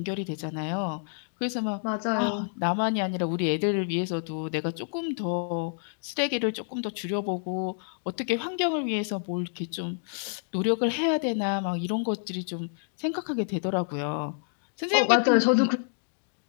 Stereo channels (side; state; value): right; silent; digital silence